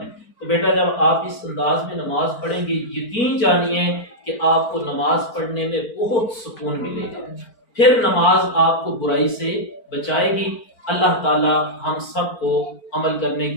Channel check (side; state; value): right; late; 4.4 ms